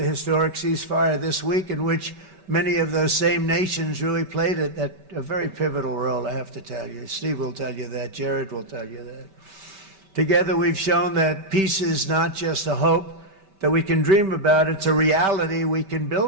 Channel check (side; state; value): left; late; 5.2 ms